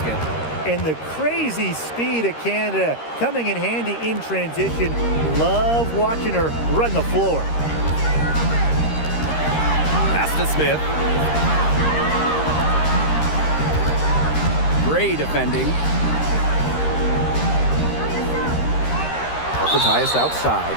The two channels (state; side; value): late; right; 13 ms